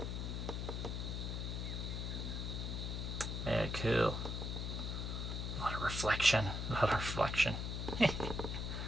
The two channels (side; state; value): left; noise; hum, 2 dB below the sound